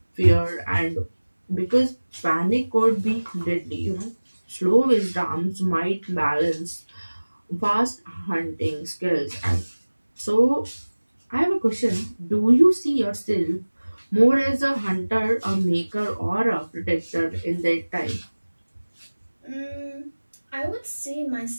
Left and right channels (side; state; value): both; inverted; correlation -1.00